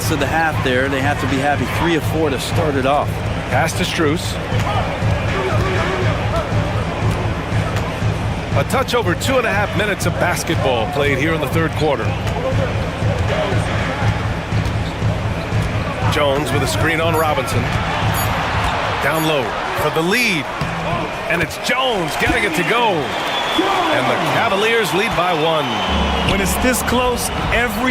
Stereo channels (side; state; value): both; identical; correlation 1.00